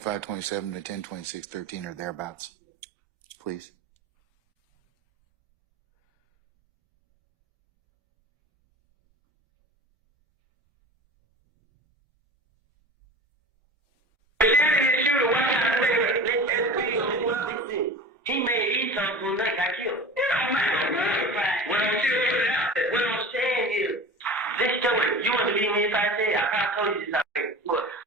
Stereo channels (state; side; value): normal; both; correlation 0.35